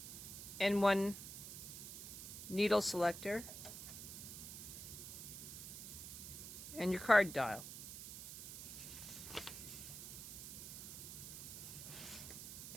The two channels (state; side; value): noise; right; hiss, 9 dB below the sound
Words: and one needle selector, and your card dial.